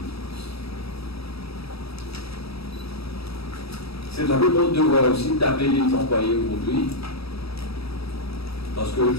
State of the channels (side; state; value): right; late; 0.77 ms